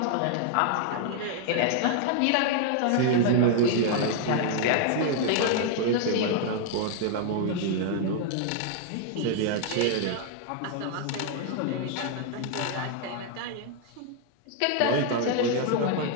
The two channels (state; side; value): different; both; correlation 0.00